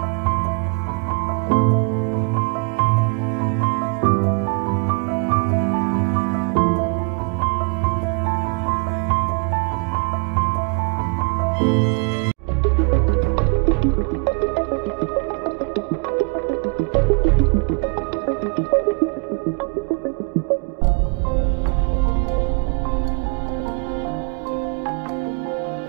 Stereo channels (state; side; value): quieter; left; 35.3 dB